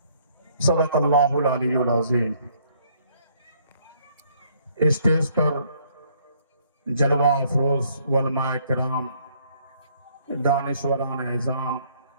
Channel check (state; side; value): inverted; both; correlation -0.65